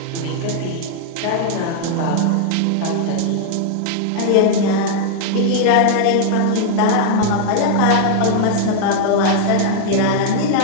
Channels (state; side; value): different; both; correlation -0.01